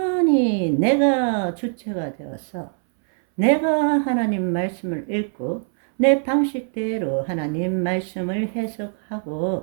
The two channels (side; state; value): left; silent; 63 dB below the other